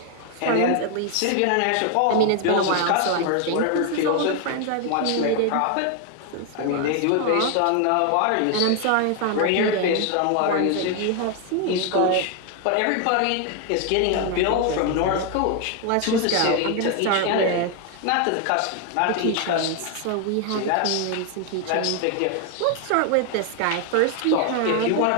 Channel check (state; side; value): different; both; correlation 0.01